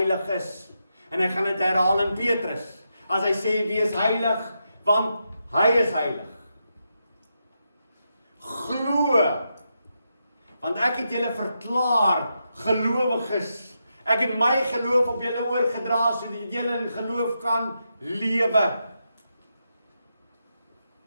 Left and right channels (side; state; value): both; inverted; correlation -0.85